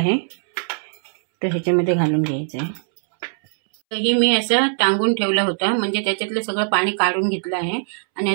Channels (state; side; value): silent; left; 65 dB below the other